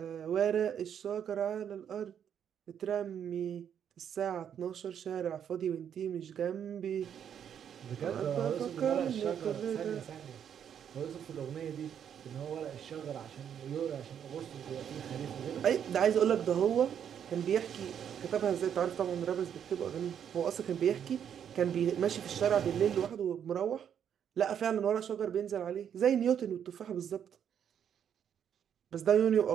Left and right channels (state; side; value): quieter; left; 8.7 dB